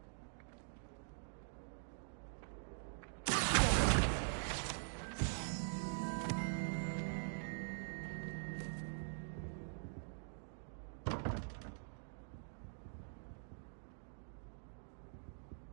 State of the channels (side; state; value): left; silent; digital silence